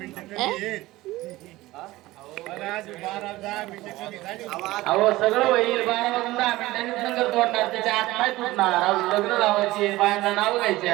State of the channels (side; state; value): left; quieter; 18.2 dB